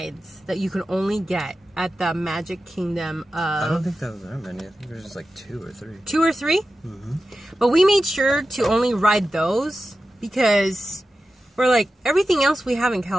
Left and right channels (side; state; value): both; normal; correlation 0.92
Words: that you could only get at the Magic Kingdom of... I don't think there was that many. I think there's just like 2 or 3. 2 or 3? Mm-hmm. But we made sure to only ride those because we're like, everything else we have in